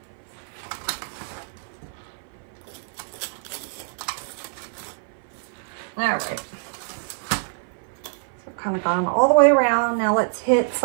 All right. So kind of gone all the way around. Now let's hit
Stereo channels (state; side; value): silent; left; 56 dB below the other